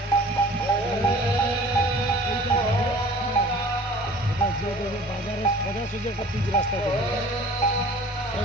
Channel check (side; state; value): both; normal; correlation 0.46